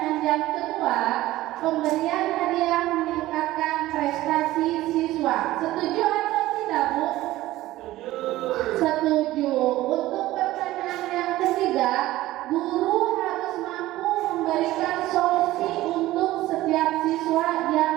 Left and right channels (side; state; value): left; quieter; 16.4 dB